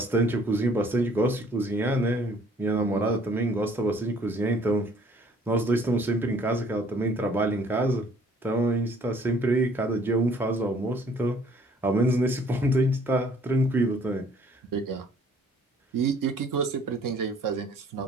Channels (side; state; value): both; normal; correlation 0.59